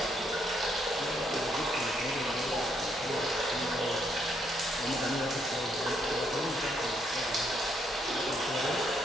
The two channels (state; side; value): normal; both; correlation 0.73